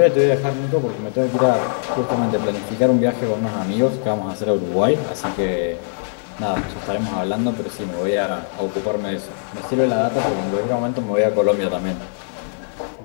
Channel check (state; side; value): silent; right; digital silence